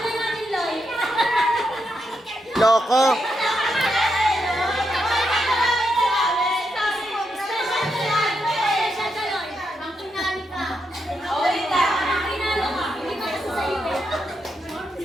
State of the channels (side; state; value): both; normal; correlation 0.83